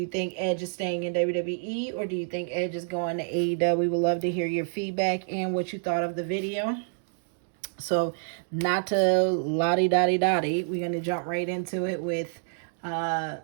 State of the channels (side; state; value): left; silent; digital silence